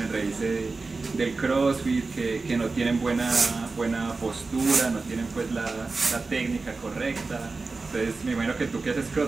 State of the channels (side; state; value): left; quieter; 3.9 dB